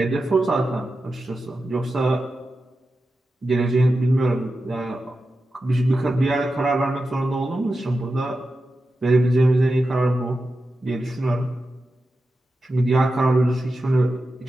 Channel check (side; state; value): both; normal; correlation 0.91